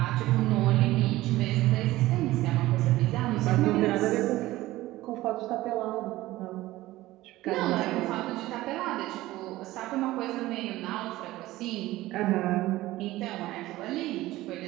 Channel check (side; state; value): left; quieter; 17.1 dB